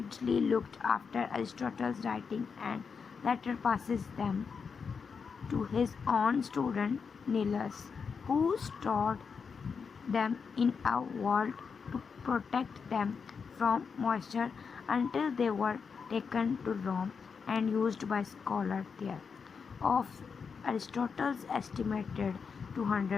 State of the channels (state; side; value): quieter; right; 5.8 dB